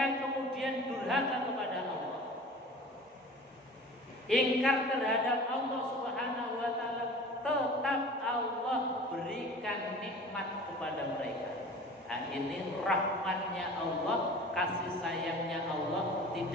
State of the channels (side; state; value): both; normal; correlation 0.41